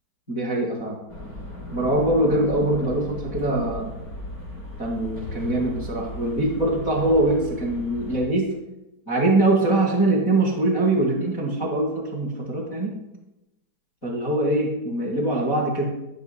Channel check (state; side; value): late; right; 4.1 ms